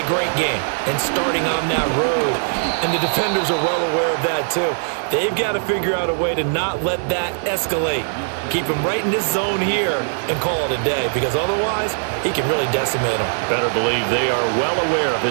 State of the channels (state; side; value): silent; left; 66 dB below the other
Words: great game and starting on that road. And the defenders are well aware of that too. They've got to figure out a way to not let that escalate. Keep him right in this zone here and call it a day, because otherwise he can really decimate them. Better believe they are well aware of